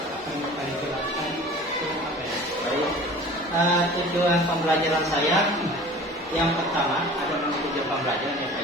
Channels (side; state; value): both; normal; correlation 0.43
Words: akan kita jelaskan itu apa ya? Baik. Tujuan pembelajaran saya yang pertama ada tujuan pembelajaran ya